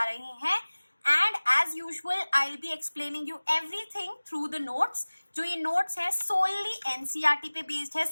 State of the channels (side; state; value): both; inverted; correlation -1.00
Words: रहे हैं. And as usual I will be explaining you everything through the notes. जो ये नोट्स है सोनली एनसीईआरटी पे बेस्ड है.